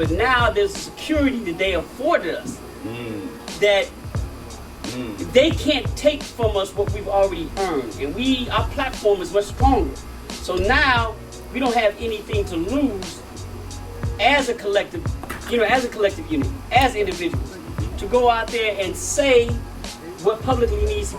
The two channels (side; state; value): both; identical; correlation 1.00